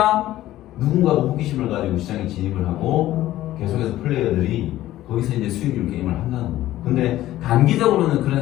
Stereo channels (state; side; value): quieter; right; 14.6 dB